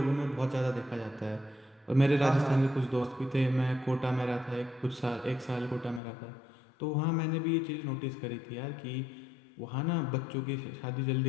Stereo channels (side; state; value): right; drops out; at 6.0 s